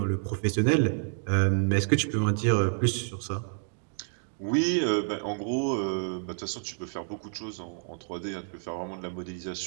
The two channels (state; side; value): silent; left; 59 dB below the other